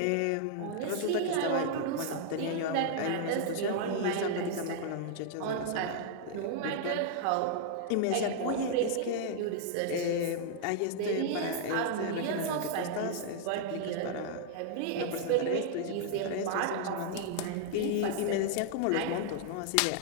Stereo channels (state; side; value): different; both; correlation -0.01